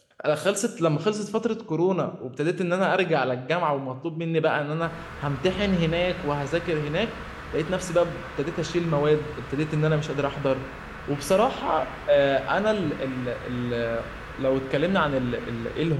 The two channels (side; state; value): both; identical; correlation 1.00